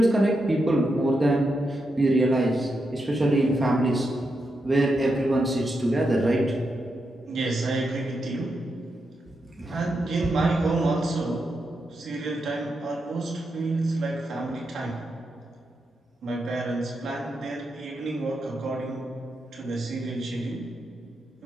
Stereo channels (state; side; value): normal; both; correlation 0.85